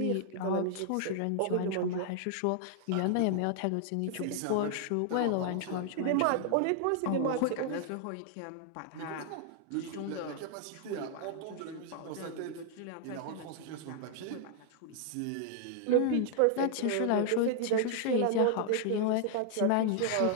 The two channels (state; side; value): different; both; correlation 0.00